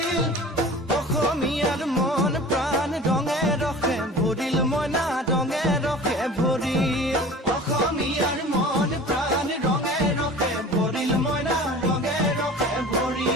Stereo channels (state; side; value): normal; both; correlation 0.41